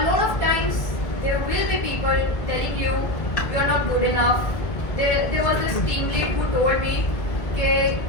lot of times there will be people telling you you are not good enough. There was this team lead who told me that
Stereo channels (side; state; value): right; late; 1.8 ms